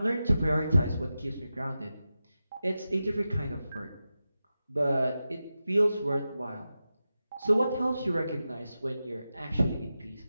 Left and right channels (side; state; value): both; inverted; correlation -0.92